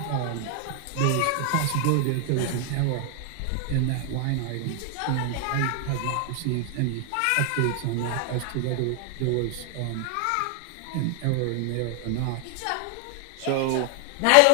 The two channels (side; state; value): both; different; correlation 0.00